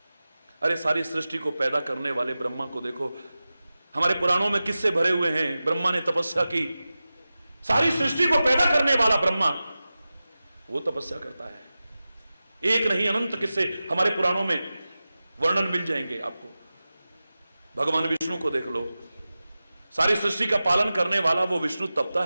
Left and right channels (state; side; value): inverted; both; correlation -0.95